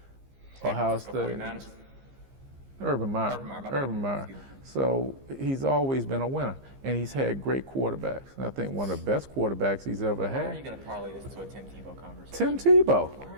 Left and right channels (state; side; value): late; left; 15 ms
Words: Ohio State. Urban Meyer. So he's always been a winner, and he's had great quarterbacks. And I think one of the best quarterbacks he's ever had. Why are you going to parlay this to a Tim Tebow conversation? Tim Tebow. Why are